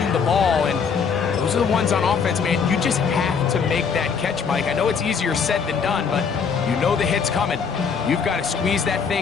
the ball. And those are the ones on offense, man. You just have to make that catch, Mike. I know it's easier said than done, but you know the hit's coming. You've got to squeeze that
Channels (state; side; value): quieter; right; 6.0 dB